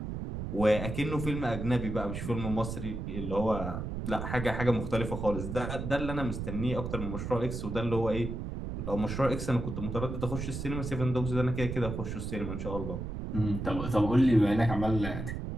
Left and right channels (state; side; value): noise; right; rumble, 5 dB below the sound